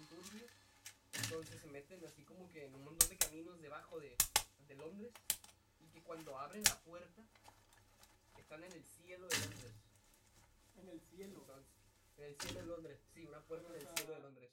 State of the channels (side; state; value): both; identical; correlation 1.00